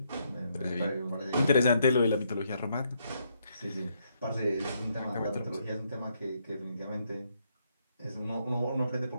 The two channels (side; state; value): both; inverted; correlation -0.75